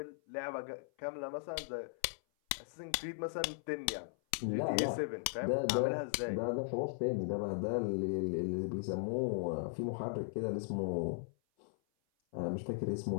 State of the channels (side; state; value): right; silent; 53 dB below the other